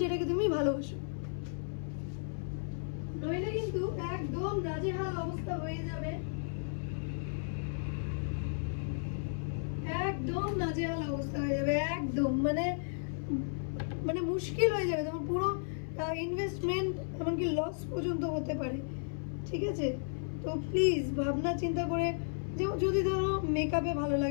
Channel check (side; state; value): right; silent; 55 dB below the other